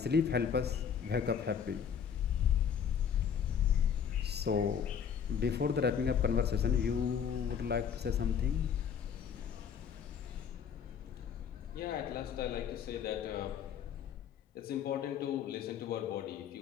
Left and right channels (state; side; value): quieter; right; 7.6 dB